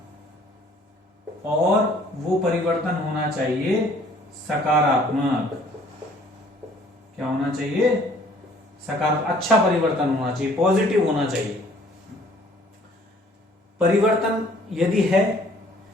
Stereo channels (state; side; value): normal; both; correlation 0.57